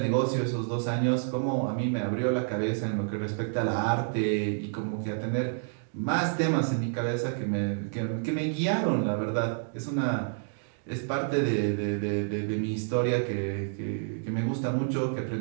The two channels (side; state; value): left; silent; digital silence